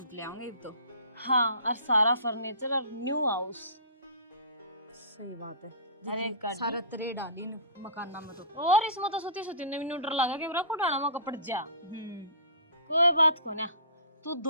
ले आऊंगे तो। हाँ और सारा फर्नीचर और न्यू हाउस। सही बात है। अरे गाड़ी। सारा तरह डाली न मकान में तो। और इसमें तो सुती सुती नवी डर लगा के मेरा पुराना में कपड़ जा। कोई बात को ना, तू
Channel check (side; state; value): both; inverted; correlation -0.40